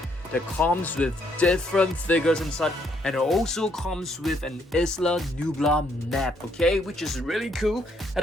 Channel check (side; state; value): both; normal; correlation 0.71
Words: that comes with different figures inside, and it also comes with an Isla Nublar map, okay, which is really cool. At